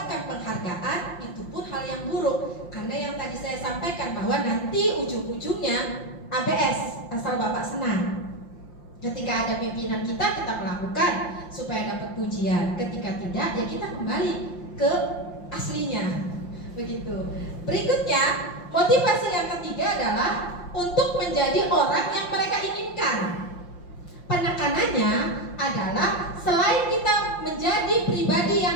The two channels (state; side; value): late; right; 5.7 ms